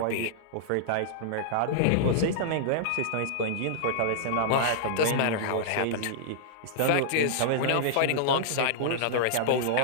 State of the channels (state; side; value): different; both; correlation -0.02